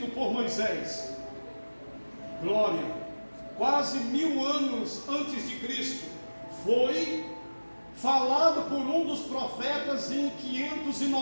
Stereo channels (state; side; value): inverted; both; correlation -1.00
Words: por Moisés. Glória. Quase 1000 anos antes de Cristo. Foi falado por um dos profetas em